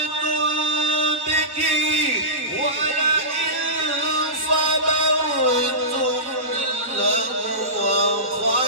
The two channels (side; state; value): left; late; 1.5 ms